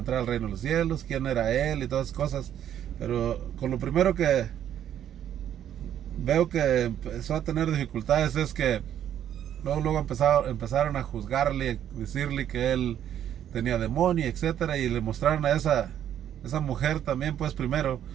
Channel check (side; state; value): left; quieter; 10.3 dB